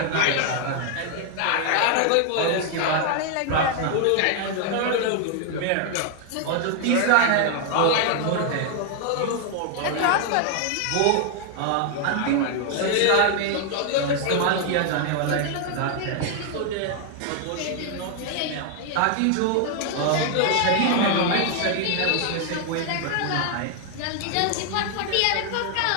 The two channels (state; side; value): different; both; correlation 0.00